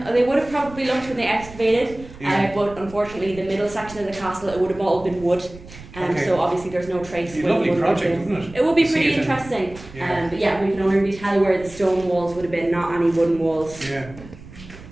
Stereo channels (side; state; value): right; noise; rumble, 18 dB below the sound